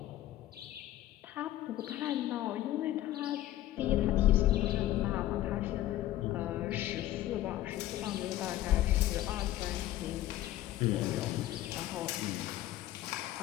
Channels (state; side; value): quieter; right; 14.2 dB